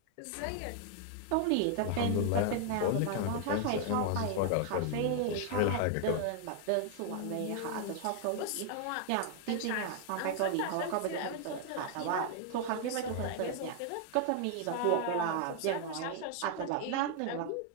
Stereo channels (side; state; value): both; different; correlation 0.00